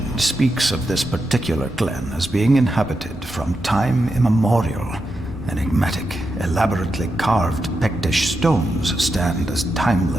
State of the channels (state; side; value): normal; both; correlation 0.87